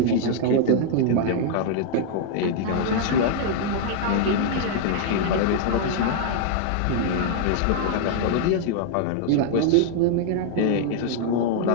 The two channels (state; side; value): different; both; correlation -0.01